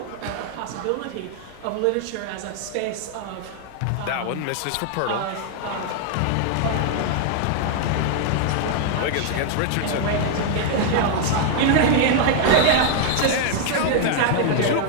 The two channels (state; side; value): different; both; correlation 0.00